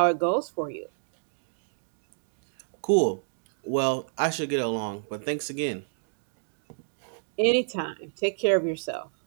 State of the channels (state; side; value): silent; left; digital silence